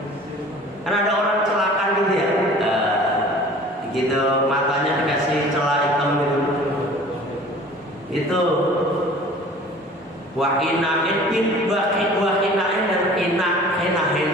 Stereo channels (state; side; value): normal; both; correlation 0.46